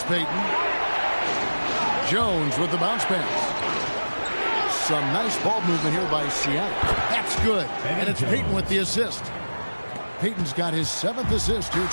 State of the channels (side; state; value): both; inverted; correlation -1.00